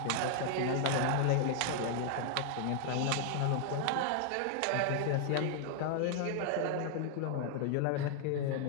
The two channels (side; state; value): both; different; correlation 0.00